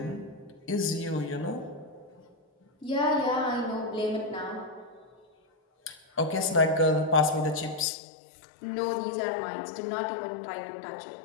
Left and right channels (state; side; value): drops out; right; at 7.9 s